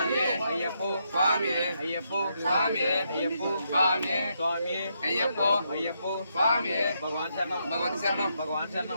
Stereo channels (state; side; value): inverted; both; correlation -0.79